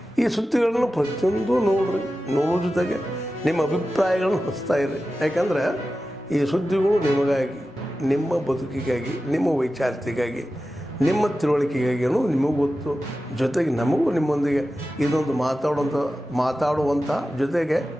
ಈ ಸುದ್ದಿಗಳನ್ನು ಪ್ರತಿಯೊಂದು ನೋಡೋ ಜೊತೆಗೆ ನಿಮ್ಮ ಅಭಿಪ್ರಾಯಗಳನ್ನು ಹಚ್ತಾ ಇರಿ. ಯಾಕಂದರೆ ಈ ಸುದ್ದಿಗಳು ನಿಮಗಾಗಿ, ನಿಮ್ಮ ಬದುಕಿಗಾಗಿ, ನಿಮ್ಮ ವೈಚಾರಿಕೆಗಾಗಿ, ನಿಮ್ಮ ತಿಳುವಳಿಕೆಗಾಗಿ ಅನ್ನೋದು ನಿಮಗೂ ಗೊತ್ತು. ಜೊತೆಗೆ ನಮಗೂ ನಿಮ್ಮೊಂದಿಗೆ ಇದೊಂದು ಮಾತಾಡುವಂಥ ಜೊತೆಗೆ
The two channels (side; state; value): both; normal; correlation 0.93